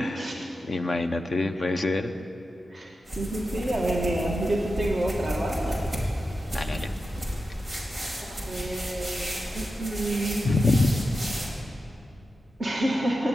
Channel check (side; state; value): both; normal; correlation 0.90